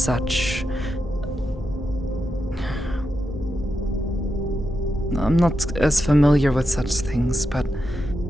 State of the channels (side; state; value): both; normal; correlation 0.87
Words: I'm not as familiar with such things, but